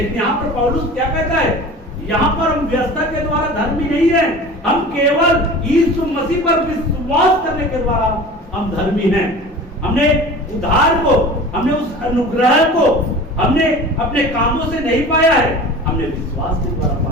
यहाँ पर पौलुस क्या कहता है? यहाँ पर हम व्यवस्था के द्वारा धर्मी नहीं है, हम केवल यीशु मसीह पर विश्वास करने के द्वारा हम धर्मी हैं। हमने उद्धार को, हमने उस अनुग्रह को हमने अपने कामों से नहीं पाया है, हमने विश्वास के द्वारा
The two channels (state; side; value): normal; both; correlation 0.38